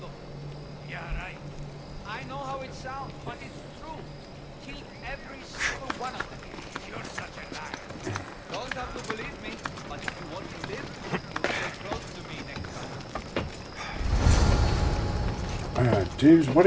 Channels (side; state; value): both; identical; correlation 1.00